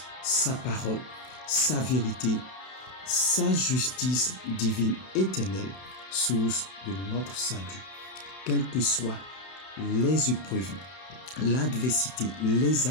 sa parole, sa vérité, sa justice divine éternelle, source de notre salut. Quelles que soient les épreuves, l'adversité, les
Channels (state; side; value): late; right; 31 ms